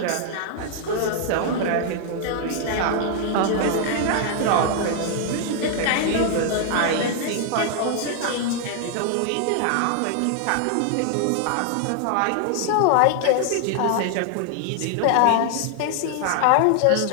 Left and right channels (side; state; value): both; different; correlation 0.00